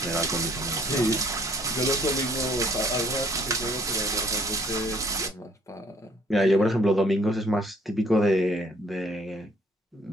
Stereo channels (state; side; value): normal; both; correlation 0.61